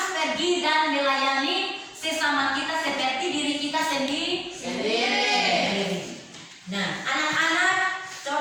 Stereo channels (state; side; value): identical; both; correlation 1.00